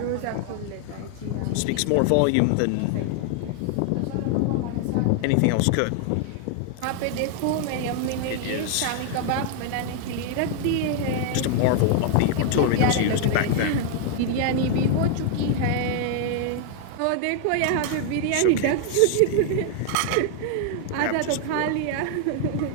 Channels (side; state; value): both; different; correlation 0.00